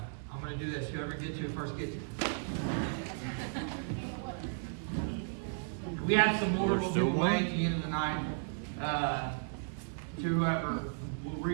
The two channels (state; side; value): silent; left; 55 dB below the other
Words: gonna do this. Whoever gets to it first gets it. We have some more we'll give away at the end of the night to whoever will